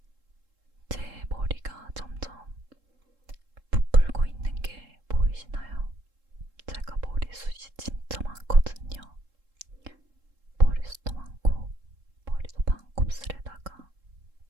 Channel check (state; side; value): late; left; 3.7 ms